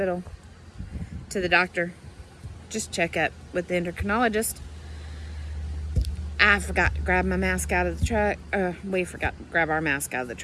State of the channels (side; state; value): both; identical; correlation 1.00